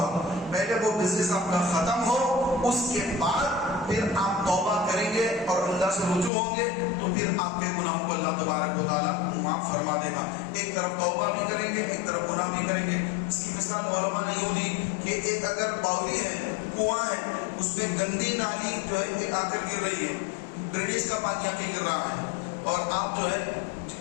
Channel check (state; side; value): drops out; right; at 6.3 s